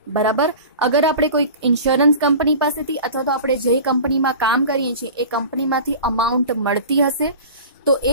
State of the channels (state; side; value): inverted; both; correlation -0.37